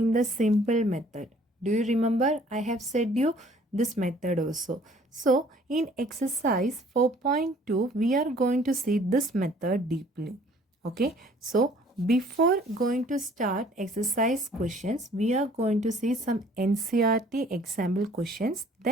the simple method. Do you remember? I have said you this method also. So, in exercise 4.2, we are going to see this method deeply. Okay, so before going to start exercise questions, we are going to see some NCRT example questions.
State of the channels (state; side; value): normal; both; correlation 0.56